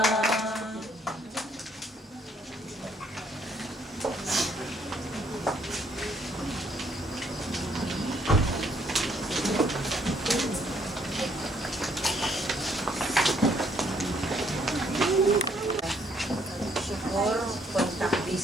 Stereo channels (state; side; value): normal; both; correlation 0.67